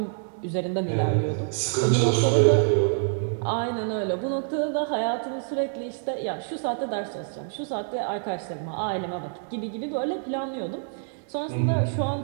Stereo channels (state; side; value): silent; left; digital silence